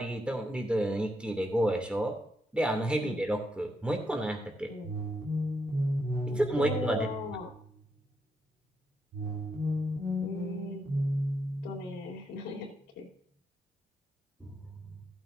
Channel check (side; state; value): both; normal; correlation 0.80